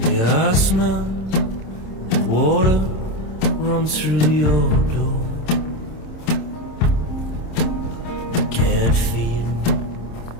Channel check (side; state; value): right; late; 27 ms